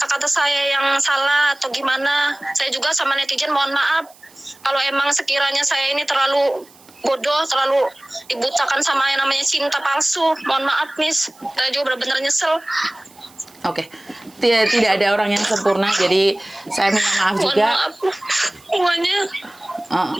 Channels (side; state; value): right; noise; hiss, 26 dB below the sound